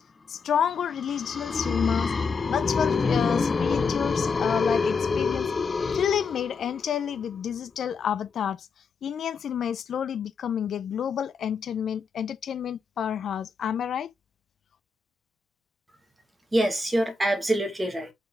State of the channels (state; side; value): quieter; right; 4.7 dB